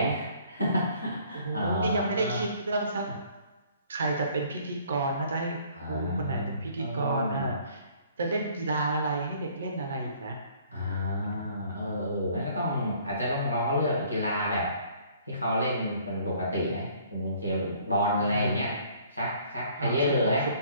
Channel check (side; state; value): both; inverted; correlation -0.58